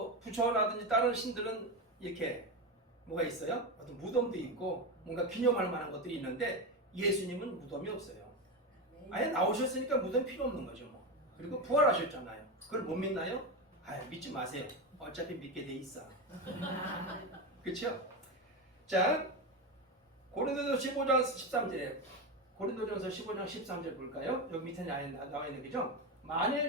부처라든지 다른 신들은 이렇게 뭐가 있어요? 어떤 무덤도 있고 뭔가 기념할 만한 것들이 있는데 예수님은 무덤이 없어요. 아예 나오셨으니까 무덤 필요 없는 거죠. 뭐. 그리고 부활하셨잖아요. 그걸 못 믿나요? 아, 믿지 마세요. 어차피 믿게 돼 있어. 그렇죠? 자, 고린도전서 15장 13절에 고린도전서 15장 13절 볼까요? 여기 밑에 나와 있는 거죠?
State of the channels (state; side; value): normal; both; correlation 0.16